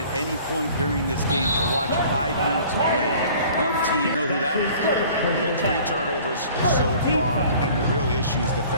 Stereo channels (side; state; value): both; inverted; correlation -0.49